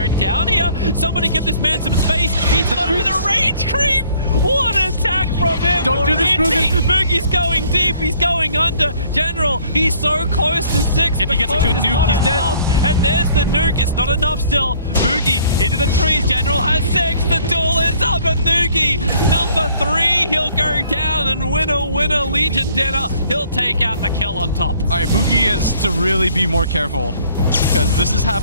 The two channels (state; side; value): inverted; both; correlation -0.59